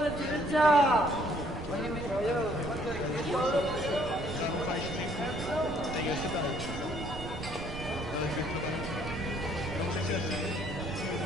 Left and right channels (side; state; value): right; noise; rumble, 10 dB below the sound